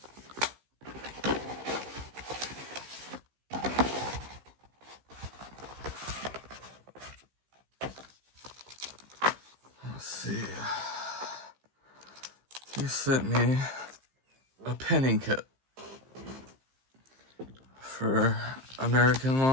Let's see. He sent me a pinning kit for American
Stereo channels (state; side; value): late; left; 15 ms